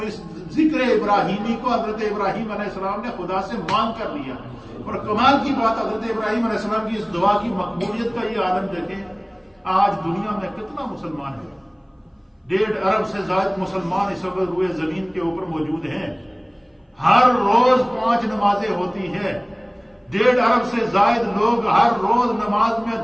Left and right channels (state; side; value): identical; both; correlation 1.00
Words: اس ذکر ابراہیمی کو حضرت ابراہیم علیہ السلام نے خدا سے مانگ کر لیا۔ اور کمال کی بات حضرت ابراہیم علیہ السلام کی اس دعا کی مقبولیت کا یہ عالم دیکھیں، آج دنیا میں کتنا مسلمان ہے، 1.5 ارب سے زائد مسلمان اس وقت روئے زمین کے اوپر موجود ہیں. ہر روز 5 نمازیں ہوتی ہیں. 1.5 ارب سے زائد لوگ ہر روز نماز میں